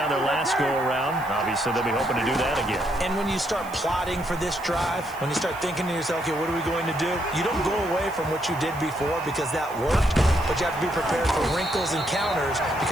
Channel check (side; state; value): right; noise; hiss, 20 dB below the sound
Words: their last go-around. Obviously, they'll be hoping to do that again. And when you start plotting for this drive, when you start thinking to yourself, okay, what are we going to do? You don't go away from what you did before because that worked, but you have to be prepared for wrinkles and counters